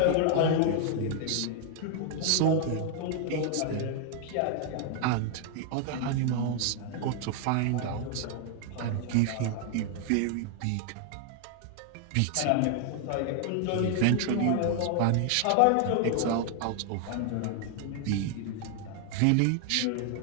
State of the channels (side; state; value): both; different; correlation 0.00